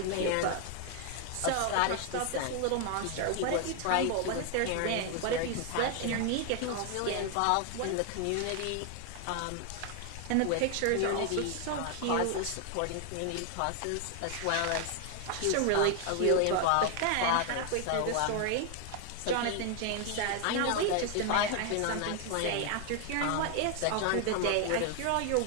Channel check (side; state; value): both; different; correlation 0.00